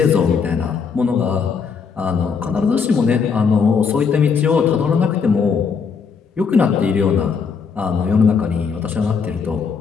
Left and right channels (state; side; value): quieter; right; 5.8 dB